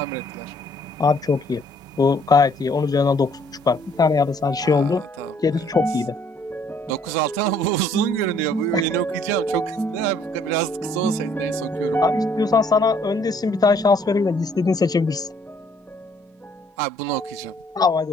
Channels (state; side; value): normal; both; correlation 0.62